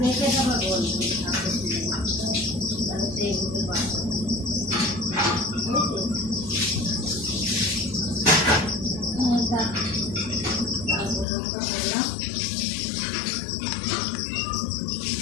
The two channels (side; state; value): right; drops out; at 11.2 s